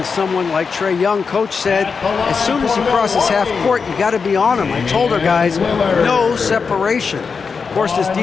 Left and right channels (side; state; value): right; quieter; 5.3 dB